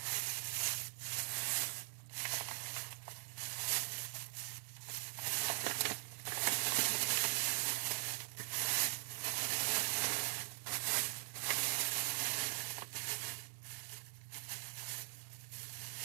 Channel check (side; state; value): left; silent; digital silence